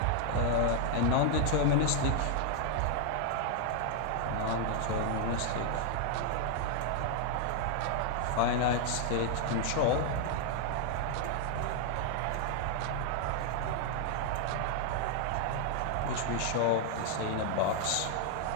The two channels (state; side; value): different; both; correlation 0.00